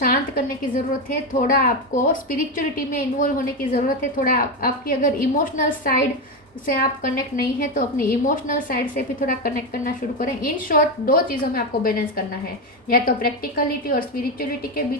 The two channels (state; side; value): normal; both; correlation 0.12